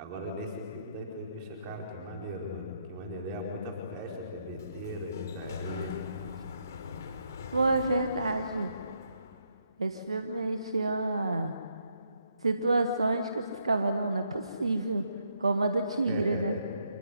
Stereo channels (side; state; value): both; inverted; correlation -0.75